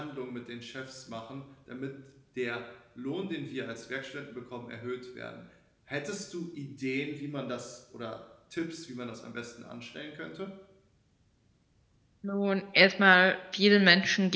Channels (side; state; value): both; identical; correlation 1.00